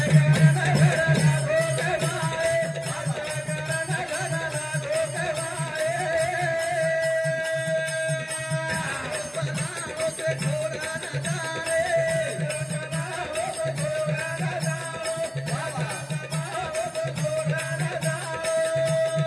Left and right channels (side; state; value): both; identical; correlation 1.00